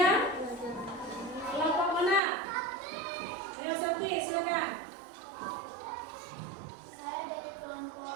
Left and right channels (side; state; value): left; drops out; at 2.2 s